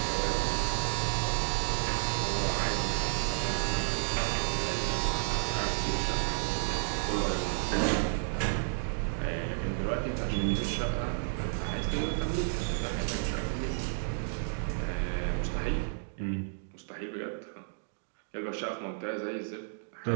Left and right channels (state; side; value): silent; left; digital silence